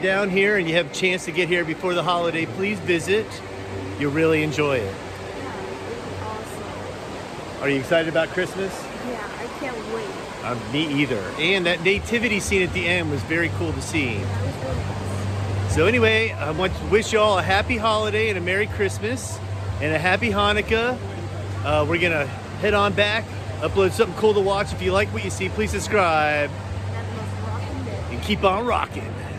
here and you have a chance to get here before the holiday, please visit. You'll really enjoy it. Are you excited about Christmas? Yeah, I can't wait. Me either. And that nativity scene at the end was very cool to see. So anyway, I want to wish you all a happy holiday and a Merry Christmas and a Happy Hanukkah. We're going to head on back, upload something cool to watch. If you like what you see, please subscribe and keep on rocking.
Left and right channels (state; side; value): identical; both; correlation 1.00